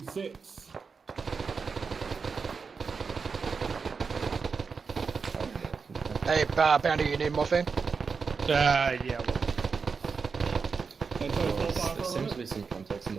Hey, Panda, you need morphine? Yeah. There seems to be some contacts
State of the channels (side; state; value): left; quieter; 5.2 dB